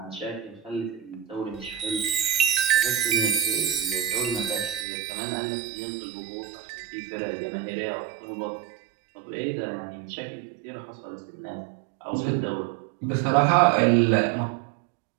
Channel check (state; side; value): drops out; left; at 4.9 s